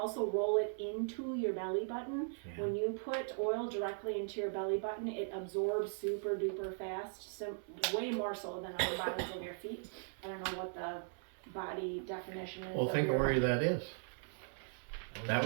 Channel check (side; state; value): left; silent; 52 dB below the other